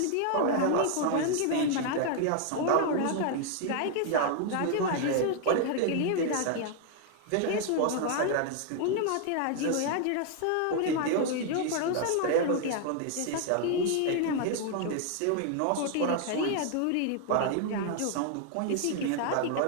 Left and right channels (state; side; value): different; both; correlation 0.00